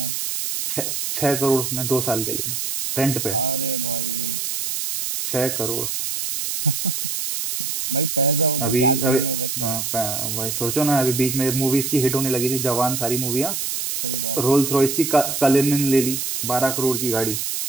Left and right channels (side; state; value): right; noise; hiss, 2 dB below the sound